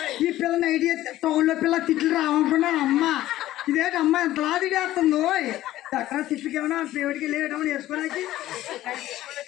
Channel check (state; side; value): quieter; right; 14.7 dB